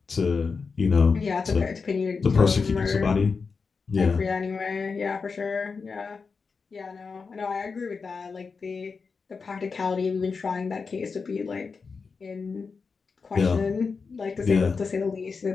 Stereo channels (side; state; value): right; quieter; 5.0 dB